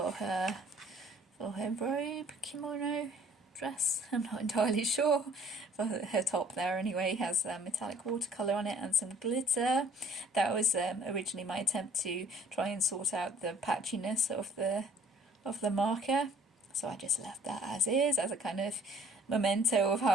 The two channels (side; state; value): both; normal; correlation 0.56